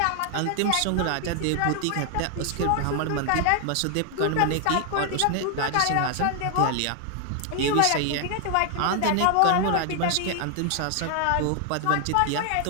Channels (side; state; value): both; different; correlation 0.00